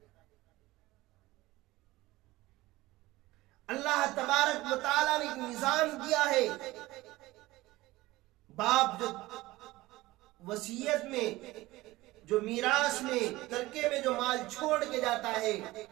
اللہ تبارک و تعالیٰ نے ایک نظام دیا ہے۔ باپ جو وصیت میں، جو میراث میں، ترکے میں جو مال چھوڑ کے جاتا ہے،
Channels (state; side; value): quieter; left; 18.8 dB